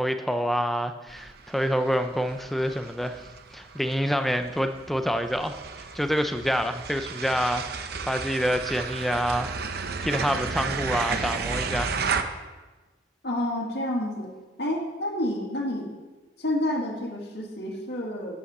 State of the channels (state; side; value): normal; both; correlation 0.73